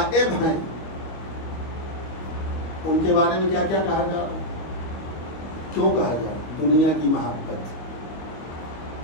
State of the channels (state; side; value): late; right; 25 ms